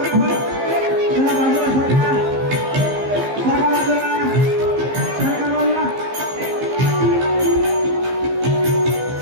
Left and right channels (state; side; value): late; left; 15 ms